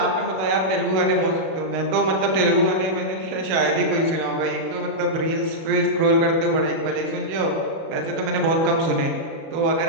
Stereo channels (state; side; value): late; left; 37 ms